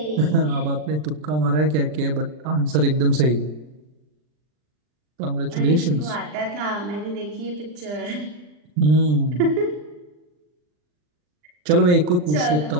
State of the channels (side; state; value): left; late; 40 ms